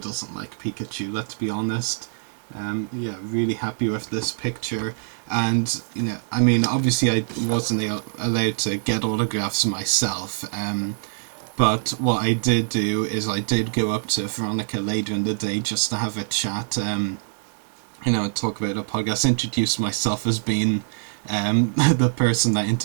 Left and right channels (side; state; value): left; silent; digital silence